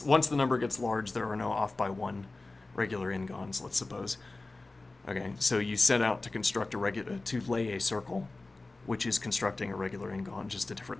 the number gets large, there are no off by one regular n-gons, let's suppose. Okay, so you set out to construct to lay a circle, which is constructing a regular n-gon, just a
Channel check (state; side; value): quieter; right; 3.3 dB